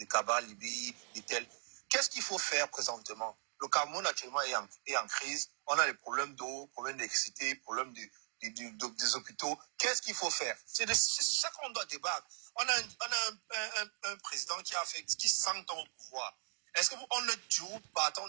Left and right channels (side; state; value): left; silent; 52 dB below the other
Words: Cabral, Libye, de tel. Qu'est-ce qu'il faut faire présentement? Le Cameroun actuellement est en crise. On a des problèmes d'eau, problèmes d'électricité, problèmes des hôpitaux. Qu'est-ce qu'il faut faire? C'est ça qu'on doit débattre. On a un président qui 100 ans au pouvoir. Est-ce qu'on est toujours partant